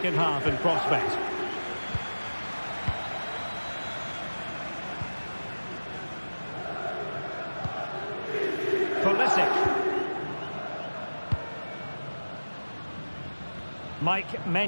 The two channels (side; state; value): both; inverted; correlation -1.00